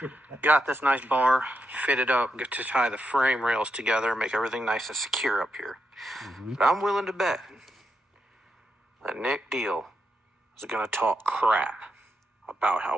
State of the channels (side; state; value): both; normal; correlation 0.84